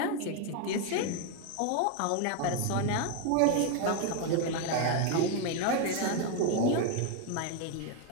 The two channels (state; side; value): different; both; correlation 0.01